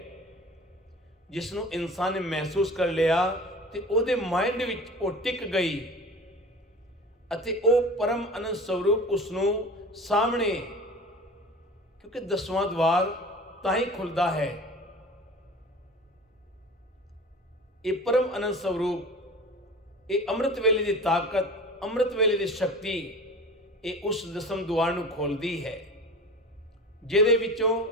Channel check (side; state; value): both; normal; correlation 0.38